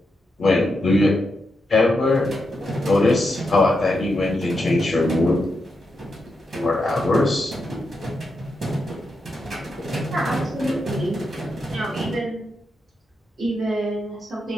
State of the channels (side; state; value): both; normal; correlation 0.85